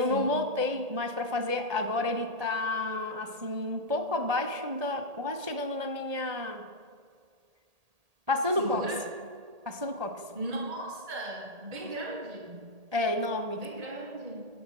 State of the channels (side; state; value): left; late; 1.8 ms